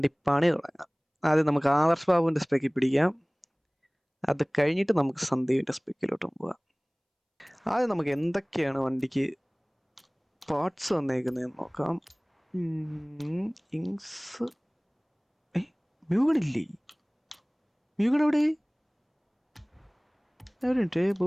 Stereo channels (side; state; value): both; identical; correlation 1.00